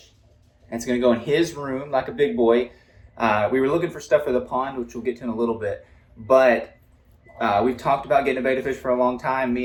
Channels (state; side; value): identical; both; correlation 1.00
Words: and it's going to go in his room like a big boy. We were looking for stuff for the pond, which we'll get to in a little bit, but we've talked about getting a betta fish for a long time,